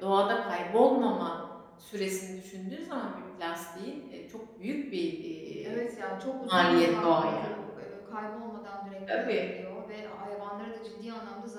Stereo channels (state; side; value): identical; both; correlation 1.00